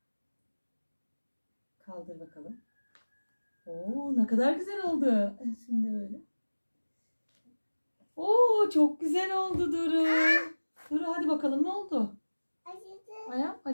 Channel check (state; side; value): inverted; both; correlation -1.00